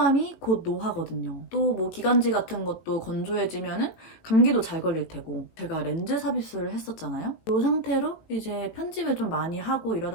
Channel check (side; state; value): right; late; 18 ms